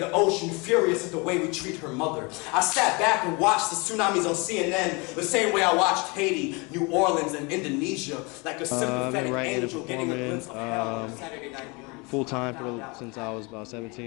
ocean furious at the way we treat her mother. I sat back and watched the tsunamis on CNN the same way I watched Haiti, New Orleans, and Indonesia, like a sympathetic angel getting a glimpse of hell on a Saturday night. Full-time since I was about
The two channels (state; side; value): quieter; right; 28.6 dB